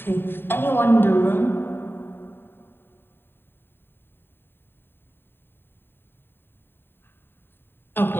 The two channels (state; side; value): late; right; 0.10 ms